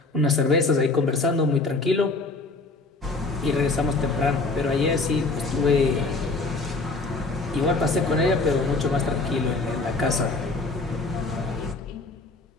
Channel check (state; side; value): quieter; right; 3.5 dB